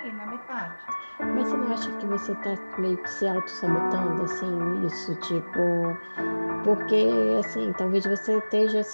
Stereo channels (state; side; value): inverted; both; correlation -1.00